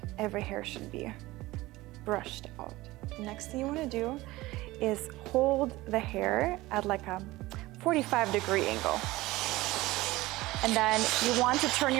every hair should be brushed out. Next thing you want to do is hold the hair at like a 45-degree angle. And then you want to turn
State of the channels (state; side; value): quieter; left; 19.1 dB